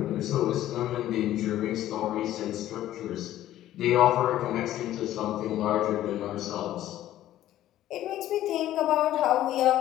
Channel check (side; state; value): right; quieter; 13.3 dB